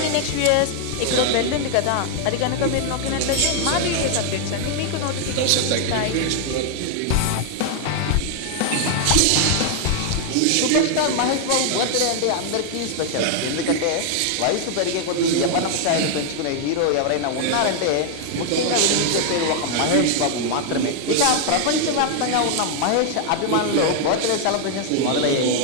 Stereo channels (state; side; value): different; both; correlation 0.00